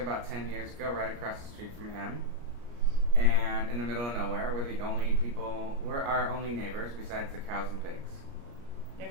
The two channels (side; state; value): left; late; 34 ms